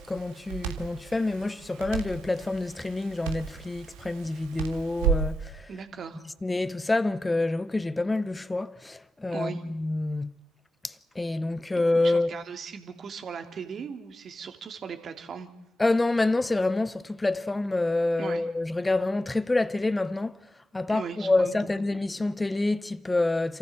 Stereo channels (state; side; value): normal; both; correlation 0.92